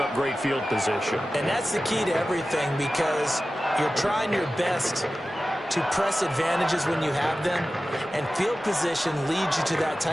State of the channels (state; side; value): normal; both; correlation 0.95